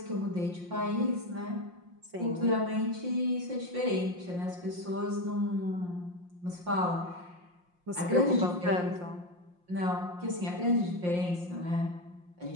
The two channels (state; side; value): late; left; 5.7 ms